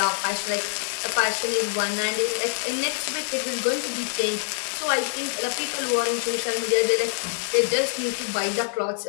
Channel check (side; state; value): right; silent; digital silence